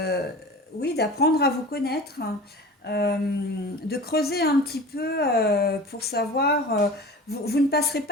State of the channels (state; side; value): normal; both; correlation 0.37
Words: oui, d'apprendre à vous connaître, hein, de creuser un petit peu pour savoir. Vous ne passerez